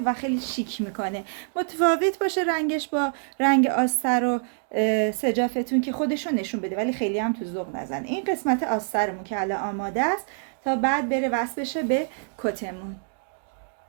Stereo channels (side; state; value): left; silent; digital silence